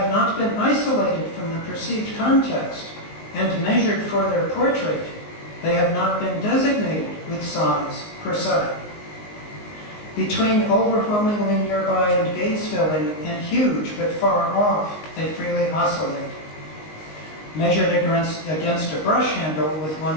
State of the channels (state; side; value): late; right; 19 ms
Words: not been isolated from the perceived context and measured for their portrait, they have not been designated with size per se. Between overwhelmingly nearby and gaze-filling and huge but far off, they freely oscillate. Measured against a brush handle with